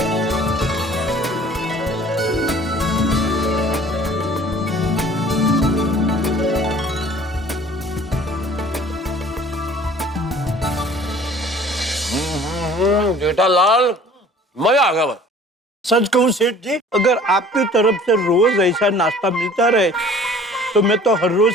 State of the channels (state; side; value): normal; both; correlation 0.50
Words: जेठालाल, मजा आ गया। सच कहूं सेठ जी, अगर आपकी तरफ से रोज ऐसा नाश्ता मिलता रहे तो मैं तो हर रोज